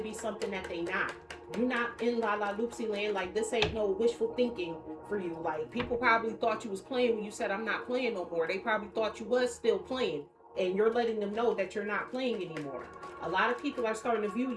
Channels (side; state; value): both; identical; correlation 1.00